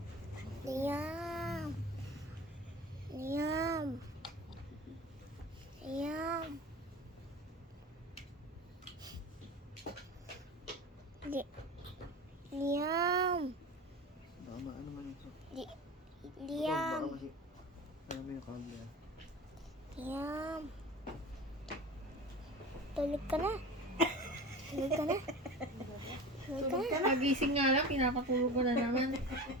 Liam. Liam. Liam. Liam. Tama, ano man ito? Liam. Baka kasi, ano mo yung camera? Liam. Tulog ka na. Tulog ka na. Tulog ka na. Pagising nga lang, pinapatulog ko na naman.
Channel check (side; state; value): both; normal; correlation 0.33